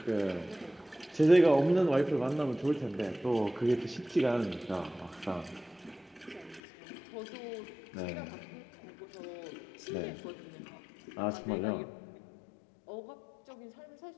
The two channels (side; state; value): right; drops out; at 6.6 s